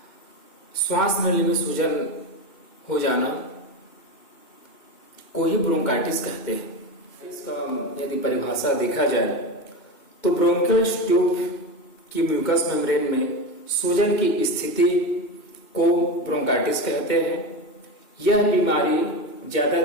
श्वास नली में सूजन हो जाना को ही ब्रोंकाइटिस कहते हैं। इसका यदि परिभाषा देखा जाए तो ब्रोंकियल ट्यूब की म्यूकस मेम्ब्रेन में सूजन की स्थिति को ब्रोंकाइटिस कहते हैं। यह बीमारी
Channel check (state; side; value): late; right; 2.2 ms